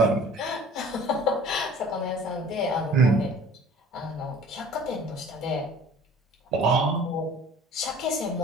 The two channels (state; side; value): normal; both; correlation 0.47